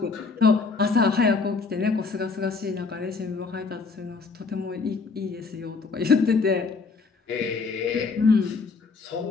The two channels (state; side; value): quieter; right; 4.5 dB